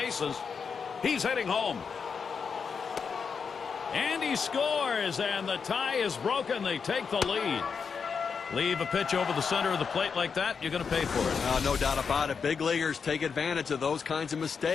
He's heading home. And he scores, and the tie is broken. They take the lead. Leave a pitch over the center of the plate like that, you're going to pay for it. No doubt about it. Big leaguers take advantage of those kinds of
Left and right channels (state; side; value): quieter; right; 5.9 dB